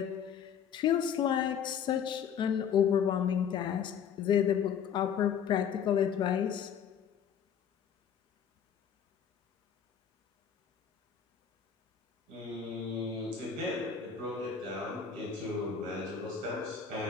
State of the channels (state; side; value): quieter; right; 7.7 dB